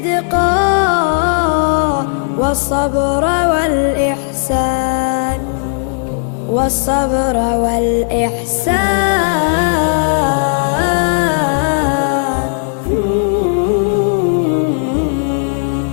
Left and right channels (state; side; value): silent; right; digital silence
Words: والصبر والإحسان، والصبر والإحسان.